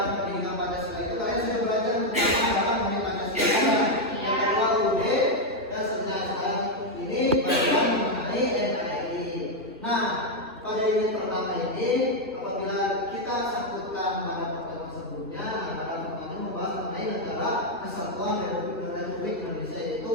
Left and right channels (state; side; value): normal; both; correlation 0.02